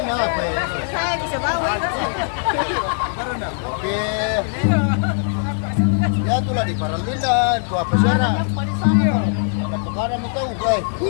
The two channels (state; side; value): silent; right; 65 dB below the other